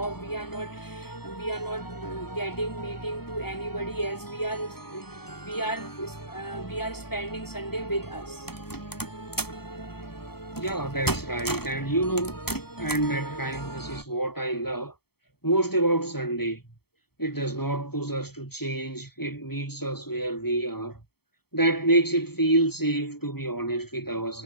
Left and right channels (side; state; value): right; late; 0.96 ms